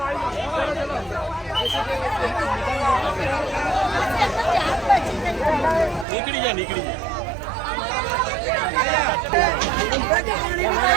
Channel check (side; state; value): left; drops out; at 6.1 s